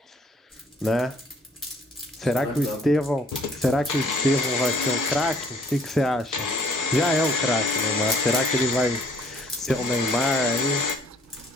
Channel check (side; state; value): both; normal; correlation 0.60